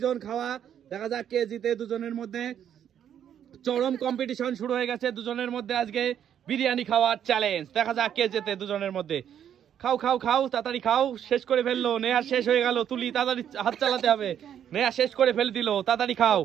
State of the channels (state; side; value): quieter; left; 9.5 dB